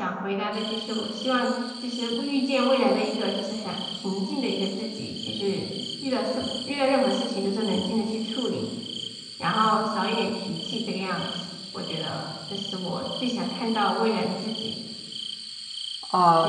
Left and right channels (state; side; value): identical; both; correlation 1.00